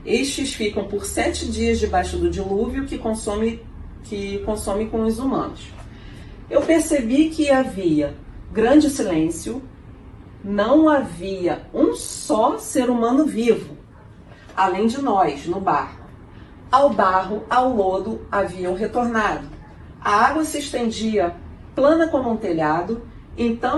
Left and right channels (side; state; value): both; identical; correlation 1.00